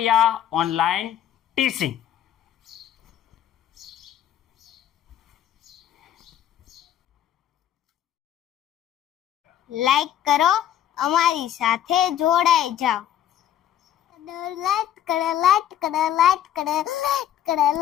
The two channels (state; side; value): quieter; right; 10.9 dB